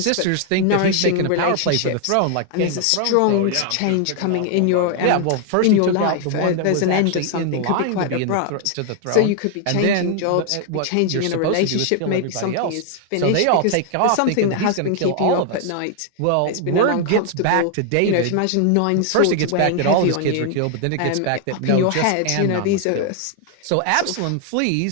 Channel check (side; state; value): both; different; correlation 0.00